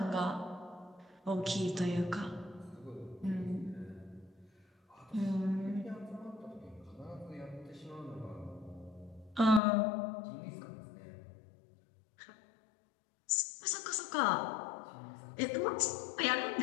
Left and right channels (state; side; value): drops out; right; at 9.6 s